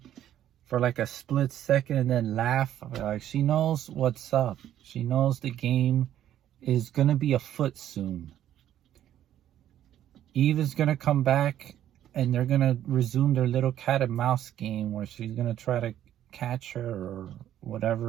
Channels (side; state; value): left; quieter; 11.5 dB